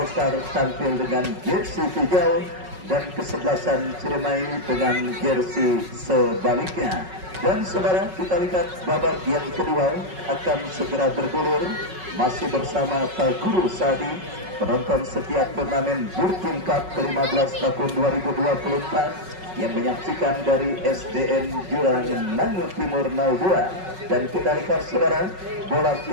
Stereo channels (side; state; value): left; late; 5.4 ms